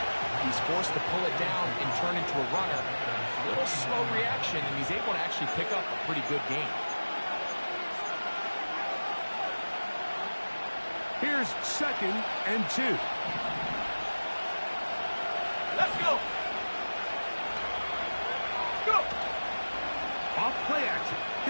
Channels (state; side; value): inverted; both; correlation -1.00